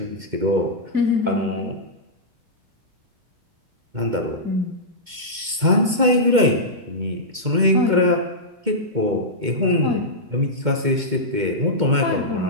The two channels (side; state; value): left; late; 2.1 ms